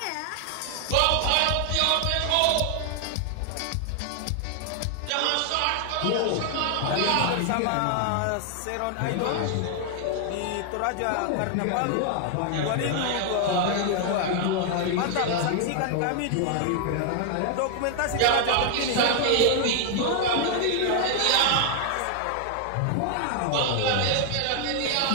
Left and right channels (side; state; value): both; different; correlation 0.00